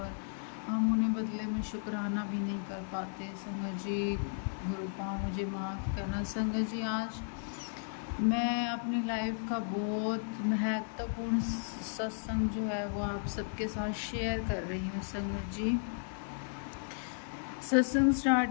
हम उन्हें बदले में शुक्राना भी नहीं कर पाते। संगत जी, गुरु पा मुझे माफ़ करना। संगत जी, आज मैं अपनी लाइफ का बहुत महत्वपूर्ण सत्संग जो है वो आप सबके साथ शेयर कर रही हूँ। संगत जी, सत्संग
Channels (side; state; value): right; silent; digital silence